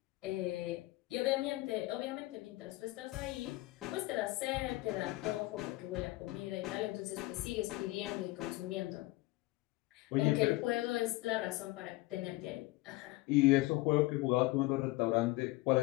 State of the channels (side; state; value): right; quieter; 20.3 dB